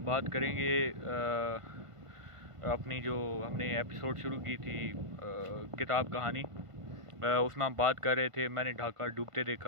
बात करेंगे अपनी जो हमने एपिसोड शुरू की थी किताब कहानी, उसमें हम बात कर रहे थे मैंने ढाका डूबते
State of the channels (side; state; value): left; late; 1.5 ms